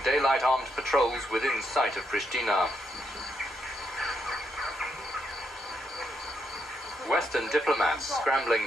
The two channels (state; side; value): normal; both; correlation 0.79